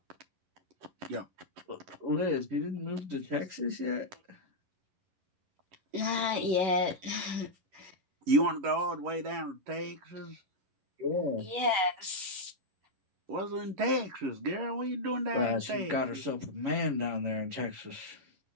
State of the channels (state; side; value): late; left; 11 ms